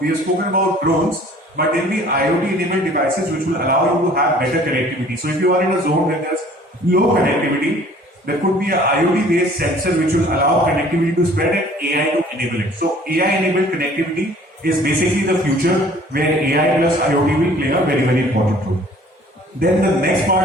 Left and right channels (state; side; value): normal; both; correlation 0.52